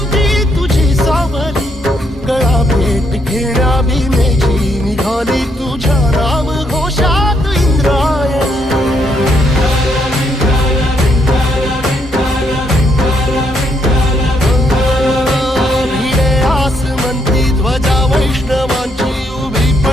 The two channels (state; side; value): normal; both; correlation 0.74